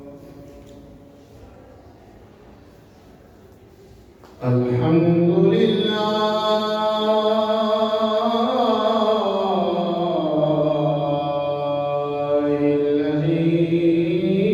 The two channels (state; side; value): identical; both; correlation 1.00